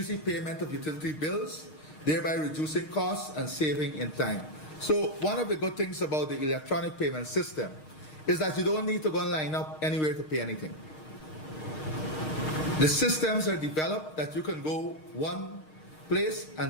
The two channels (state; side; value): late; right; 6.5 ms